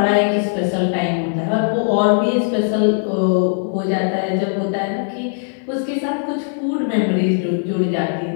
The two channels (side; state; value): right; silent; 58 dB below the other